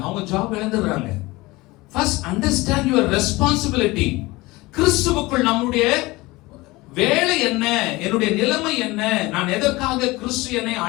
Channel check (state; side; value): quieter; right; 21.3 dB